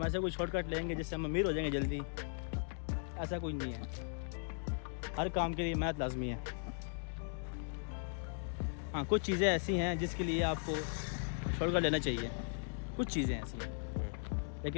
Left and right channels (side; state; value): right; silent; digital silence